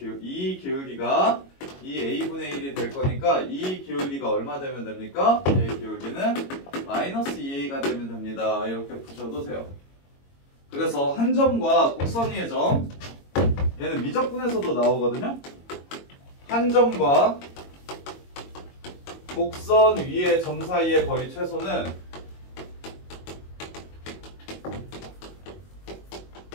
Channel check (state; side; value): late; right; 22 ms